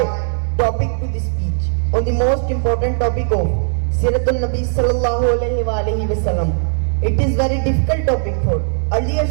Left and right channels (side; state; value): left; silent; 58 dB below the other